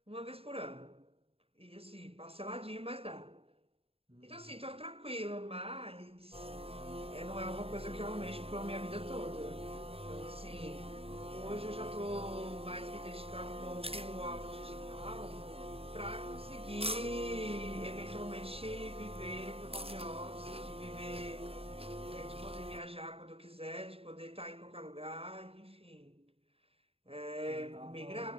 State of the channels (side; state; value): left; late; 0.28 ms